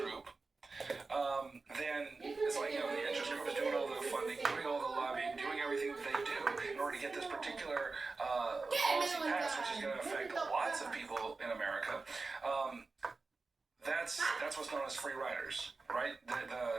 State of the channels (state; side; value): quieter; left; 3.9 dB